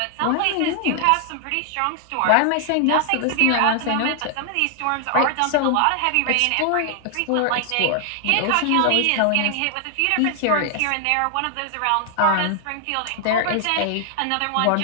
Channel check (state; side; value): different; both; correlation 0.00